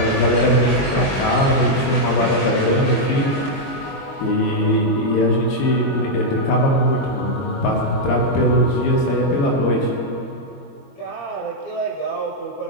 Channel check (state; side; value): late; right; 22 ms